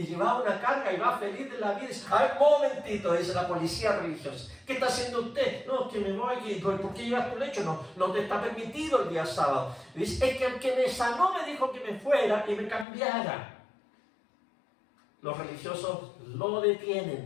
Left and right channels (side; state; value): right; drops out; at 12.9 s